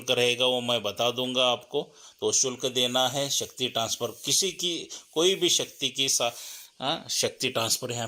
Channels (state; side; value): identical; both; correlation 1.00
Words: रहेगा वो मैं बता दूंगा आपको, तो शुल्क देना है। शक्ति ट्रांसफ़र किसी की कोई भी शक्ति की शक्ति ट्रांसफ़र